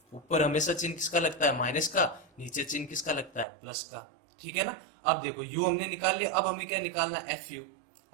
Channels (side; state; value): left; drops out; at 3.5 s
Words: ऊपर हमेशा चिन्ह किसका लगता है, माइनस का, नीचे चिन्ह किसका लगता है, प्लस का। ठीक है ना। अब देखो यू हमने निकाल लिया, अब हमें क्या निकालना है, एफ यू।